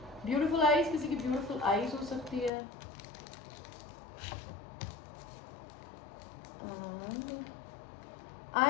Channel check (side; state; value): right; drops out; at 2.5 s